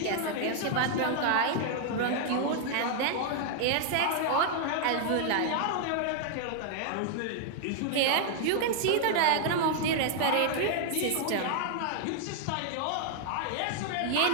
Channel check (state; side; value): different; both; correlation 0.00